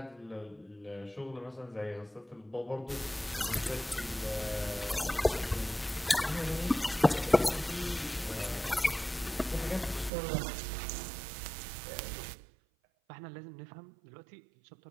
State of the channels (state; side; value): drops out; left; at 10.1 s